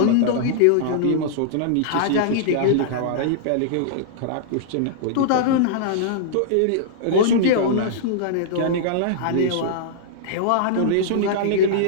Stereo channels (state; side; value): different; both; correlation -0.02